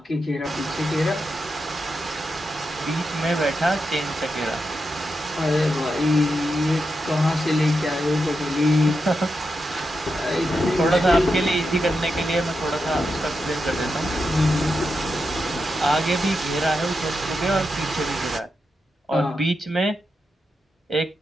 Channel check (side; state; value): both; normal; correlation 0.87